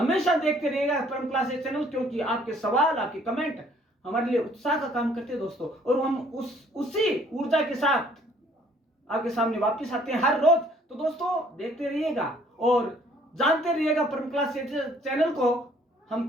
देखते रहिएगा परम क्लासेस चैनल, क्योंकि आपके सवाल, आपके कमेंट हमारे लिए उत्साह का काम करते हैं दोस्तों, और हम उसी ऊर्जा के साथ आपके सामने वापस आते हैं हर रोज। तो दोस्तों देखते रहिएगा और जानते रहिएगा परम क्लासेस चैनल को।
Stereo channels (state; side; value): normal; both; correlation 0.60